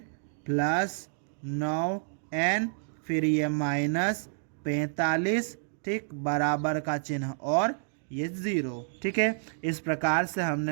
प्लस 9n, फिर ये -45, ठीक, बराबर का चिन्ह और ये 0। ठीक है, इस प्रकार से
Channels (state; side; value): silent; left; digital silence